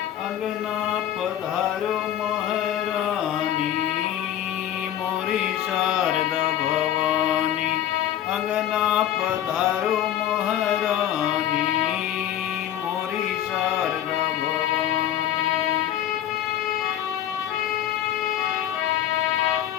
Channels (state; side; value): quieter; right; 11.3 dB